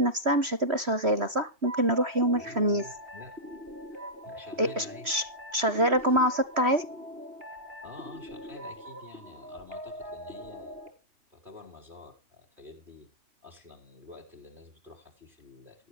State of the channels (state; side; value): late; left; 3.1 ms